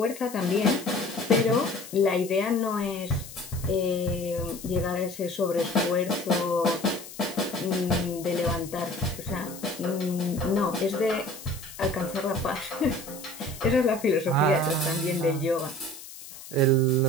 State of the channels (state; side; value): noise; left; hiss, 15 dB below the sound